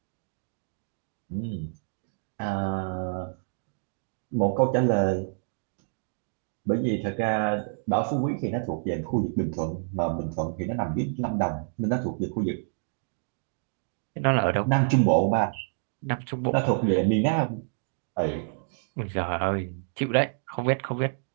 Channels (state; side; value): silent; left; digital silence